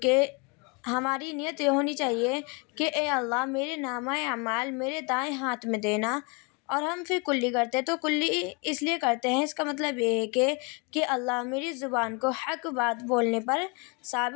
ہماری نیت یہ ہونی چاہیے کہ اے اللہ میرے نامہ اعمال میرے دائیں ہاتھ میں دینا۔ اور ہم پھر کلی کرتے ہیں، تو کلی اس لیے کرتے ہیں، اس کا مطلب یہ ہے کہ اللہ میری زبان کو حق بات بولنے پر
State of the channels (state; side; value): quieter; right; 31.8 dB